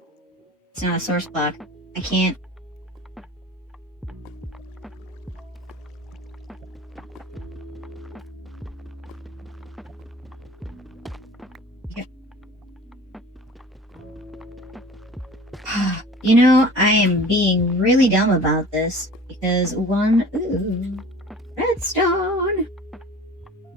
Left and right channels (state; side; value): normal; both; correlation 0.43